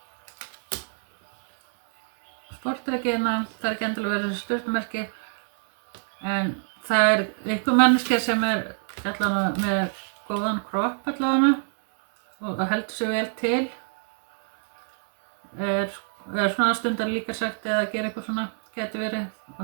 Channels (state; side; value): silent; left; digital silence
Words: sportdrekina. Það er ekki endilega verið þessi stjörnumerki, en það er einhver manneskja sem allavega með góðan kropp allavega og heldur sig vel til. Svona stundar líka sagt eða gera eitthvað svona, getur verið, og